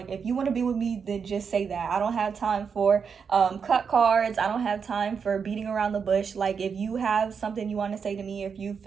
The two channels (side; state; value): left; quieter; 6.3 dB